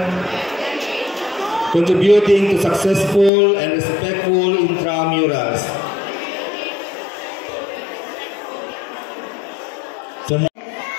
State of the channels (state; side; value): drops out; right; at 3.3 s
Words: contributing to successful and respectful intramurals.